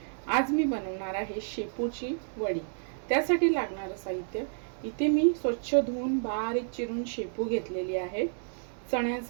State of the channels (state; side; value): silent; left; digital silence